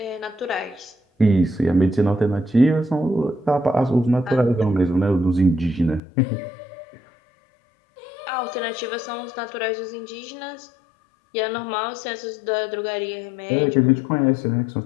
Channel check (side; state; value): right; drops out; at 6.0 s